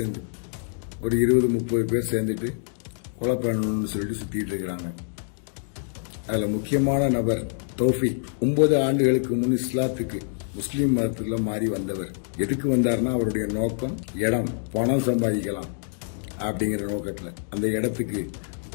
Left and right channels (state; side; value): silent; right; digital silence